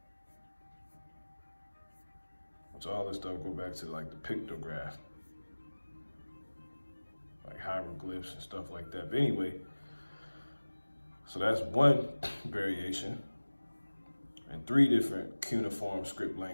So all this stuff go back to like the pictograph, like hieroglyphs and stuff like that. But anyway, so that's one variation and 3 different cuneiform script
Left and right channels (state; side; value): inverted; both; correlation -1.00